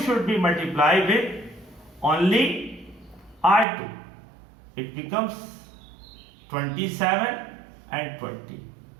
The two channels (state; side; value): drops out; left; at 3.7 s